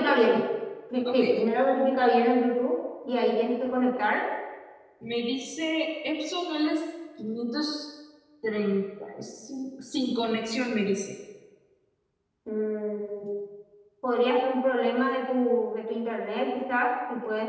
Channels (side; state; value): both; identical; correlation 1.00